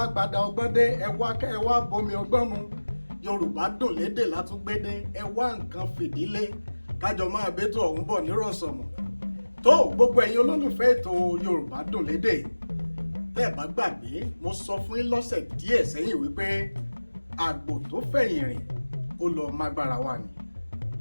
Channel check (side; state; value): both; inverted; correlation -1.00